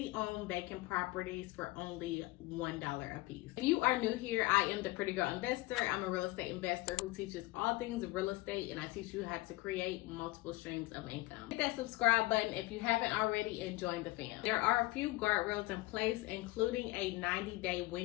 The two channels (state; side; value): quieter; right; 20.6 dB